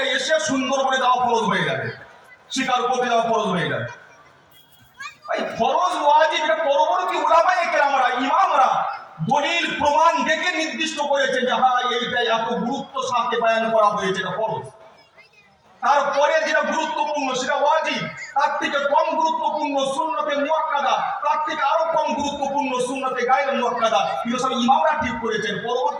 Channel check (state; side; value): identical; both; correlation 1.00